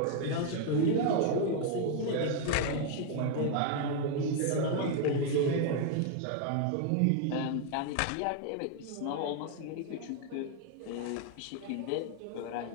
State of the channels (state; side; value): different; both; correlation 0.00